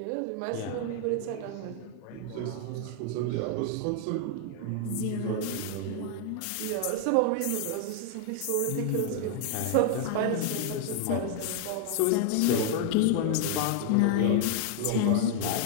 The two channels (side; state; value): both; different; correlation 0.00